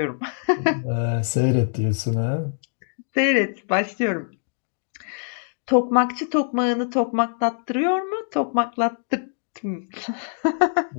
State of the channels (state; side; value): silent; right; digital silence